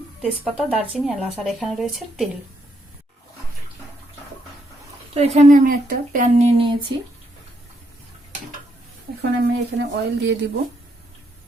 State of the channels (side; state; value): both; normal; correlation 0.76